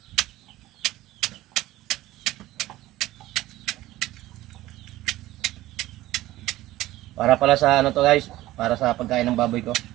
Para pala sa ano to guys, para sa pagkain ng baboy ko.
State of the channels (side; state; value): left; quieter; 16.4 dB